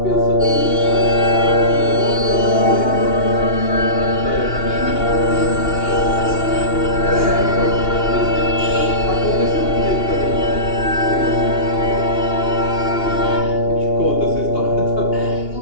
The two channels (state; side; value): late; right; 2.8 ms